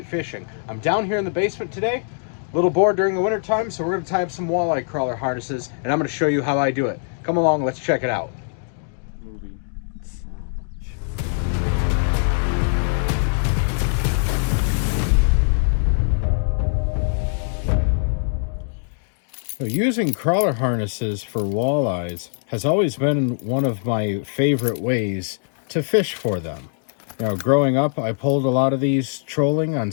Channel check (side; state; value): right; silent; digital silence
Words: Fishing. I'm down here in the basement today, a little bored during the winter time, so we're going to tie up some walleye crawler harnesses, and I'm going to show you how I do it. Come along, let's check it out. Using crawler harnesses for walleyes has always been one of my favorite ways to fish for them. Growing up, I pulled a lot of these trolling on